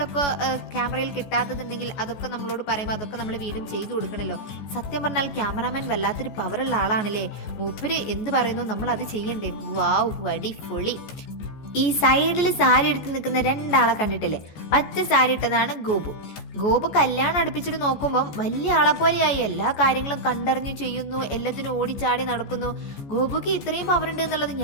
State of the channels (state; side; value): late; right; 14 ms